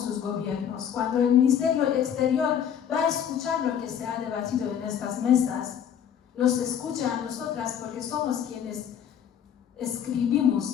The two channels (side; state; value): right; quieter; 8.8 dB